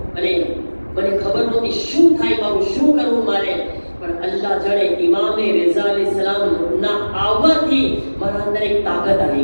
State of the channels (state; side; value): inverted; both; correlation -1.00